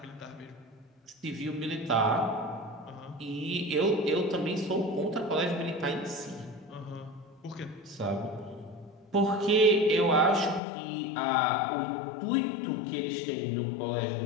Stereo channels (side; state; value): right; drops out; at 10.6 s